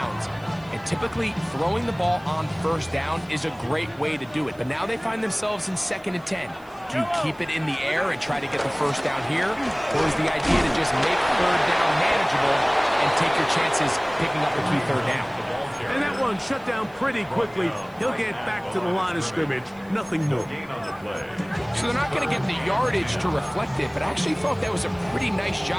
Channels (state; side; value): noise; right; hiss, 29 dB below the sound